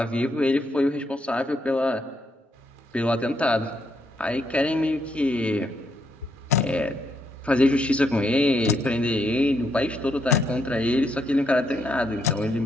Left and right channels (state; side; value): normal; both; correlation 0.76